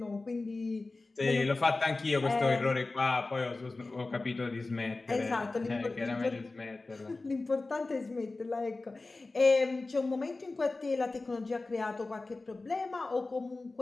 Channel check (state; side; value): quieter; right; 3.4 dB